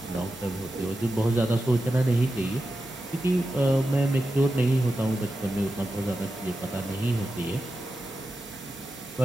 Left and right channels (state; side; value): normal; both; correlation 0.91